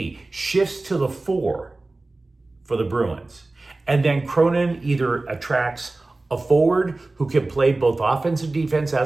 shifts to the 4 for the Bruins, and then Cronin either attracts a forward who can play both offense and defense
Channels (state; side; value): quieter; left; 3.1 dB